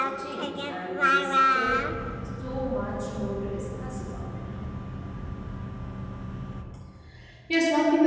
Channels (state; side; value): identical; both; correlation 1.00